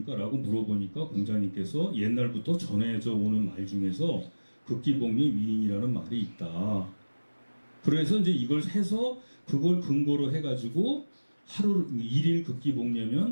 물어보니까 공자님께서 옛날부터 전해져 오는 말 중에서 극기복리의 위인이라는 말이 있다. 그래서 이제 이걸 해서 그걸 근거로 해가지고 하루 일일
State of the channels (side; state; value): both; inverted; correlation -1.00